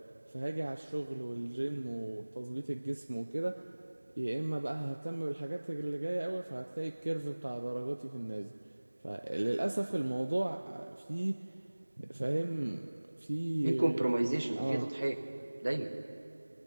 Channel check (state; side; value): inverted; both; correlation -1.00